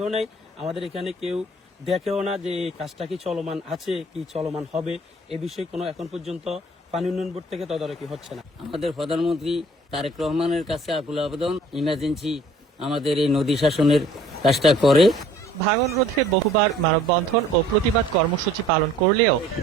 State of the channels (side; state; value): both; normal; correlation 0.54